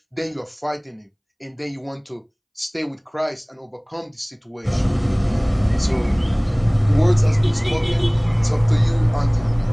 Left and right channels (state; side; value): identical; both; correlation 1.00